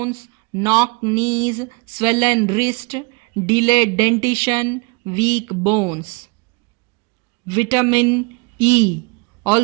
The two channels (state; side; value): quieter; left; 28.4 dB